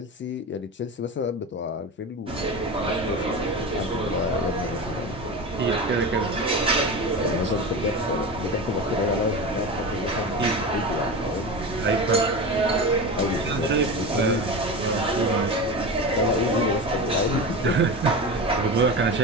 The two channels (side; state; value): both; normal; correlation 0.26